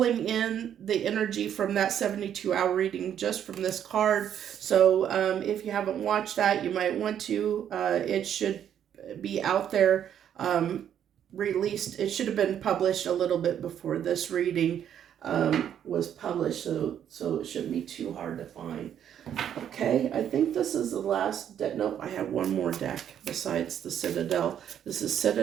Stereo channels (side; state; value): left; quieter; 9.6 dB